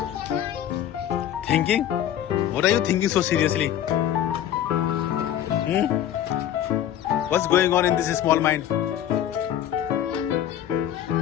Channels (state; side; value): quieter; right; 10.9 dB